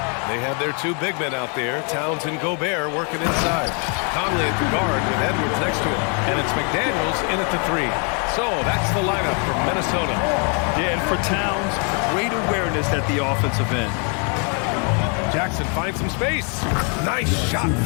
They have their 2 big men out there, Towns and Gobert, working inside. Conley at the guard with Edwards next to him. And it's McDaniels in at the 3. So that's the lineup from Minnesota. Yeah, and for Towns, great awareness at the offensive end. Jackson finds some space. Nice shot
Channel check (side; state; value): right; quieter; 38.2 dB